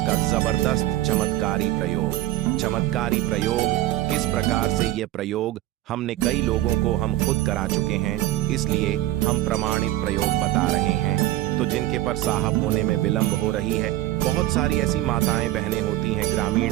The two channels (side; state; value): left; quieter; 15.2 dB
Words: जबरदस्त चमत्कारी प्रयोग। चमत्कारी प्रयोग किस प्रकार से, यह प्रयोग हमने कई लोगों को हम खुद करा चुके हैं, इसलिए हम प्रमाणित प्रयोग बता रहे हैं। तो जिनके पर साहब होने में विलंब हो रही है, बहुत सारी ऐसी माताएं बहनें होती हैं